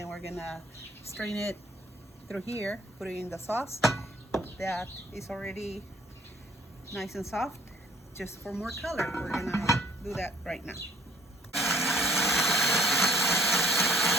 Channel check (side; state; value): both; normal; correlation 0.58